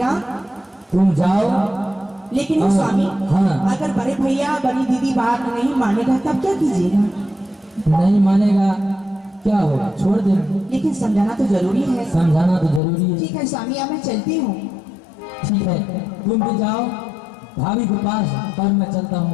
तुम जाओ। लेकिन हाँ, स्वामी, हाँ। अगर बड़े भैया बड़ी दीदी बात नहीं मानेगा तब क्या कीजिएगा? नहीं मानेगा क्या होगा, छोड़ दे। लेकिन समझाना तो जरूरी है। समझाना तो जरूरी है। ठीक है स्वामी, अब मैं चलती हूँ। ठीक है, तुम भी जाओ भाभी के पास और मैं चलता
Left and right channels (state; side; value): drops out; right; at 12.8 s